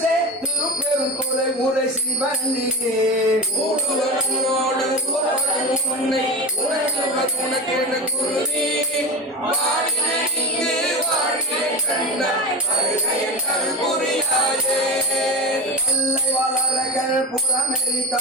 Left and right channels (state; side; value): normal; both; correlation 0.26